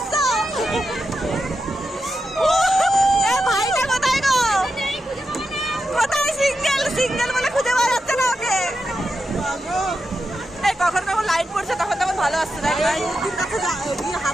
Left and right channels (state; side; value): normal; both; correlation 0.88